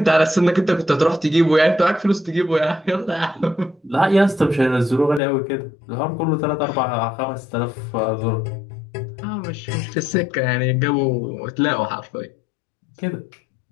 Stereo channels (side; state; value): right; drops out; at 5.2 s